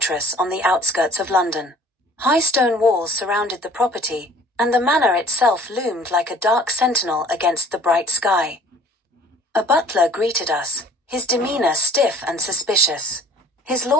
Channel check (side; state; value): both; normal; correlation 0.52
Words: on the outskirts of London. High stone walls surrounded the property, and the manor itself loomed like a dark sentinel against the bright sky. A butler greeted us, his demeanor stiff and suspicious. "His